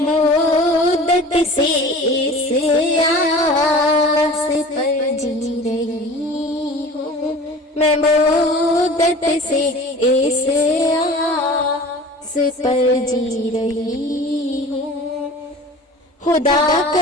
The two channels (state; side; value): normal; both; correlation 0.41